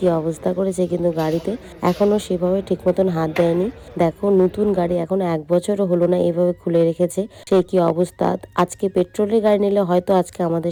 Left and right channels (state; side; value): identical; both; correlation 1.00